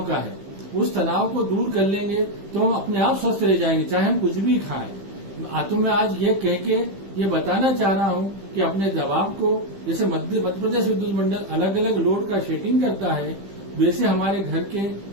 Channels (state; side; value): late; left; 15 ms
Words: का है। उस तनाव को दूर कर लेंगे तो हम अपने आप स्वस्थ रह जाएंगे, चाहे हम कुछ भी खाएं। तो मैं आज ये कह के ये बताना चाह रहा हूं कि अपने दबाव को, जैसे मध्य प्रदेश विद्युत मंडल अलग अलग लोड का शेडिंग करता है, वैसे हमारे घर के